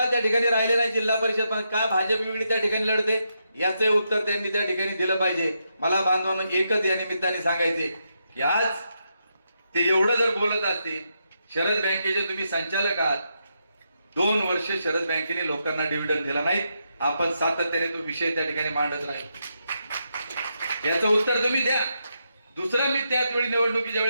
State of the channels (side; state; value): both; inverted; correlation -0.82